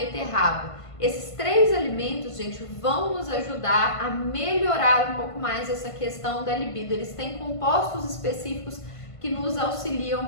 Esses 3 alimentos, gente, vão nos ajudar a melhorar um pouco mais essa questão da libido. Eles têm compostos específicos que nos auxiliam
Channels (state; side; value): late; right; 1.5 ms